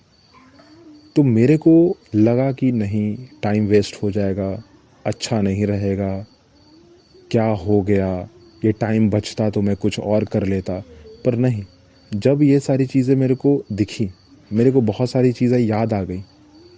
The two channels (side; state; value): both; identical; correlation 1.00